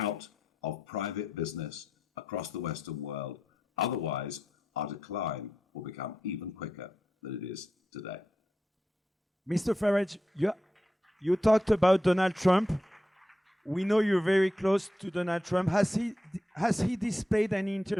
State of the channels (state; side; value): normal; both; correlation 0.87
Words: of private business across the Western world. Otherwise, our decline will become even quicker than it is today. Mr. Farage, you talked about Donald Trump. We know you're very close to Donald Trump. Has he displayed any